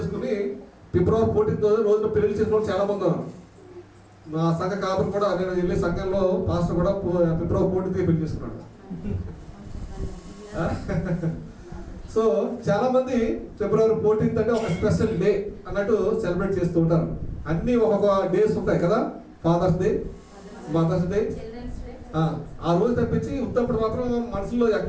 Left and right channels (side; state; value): both; identical; correlation 1.00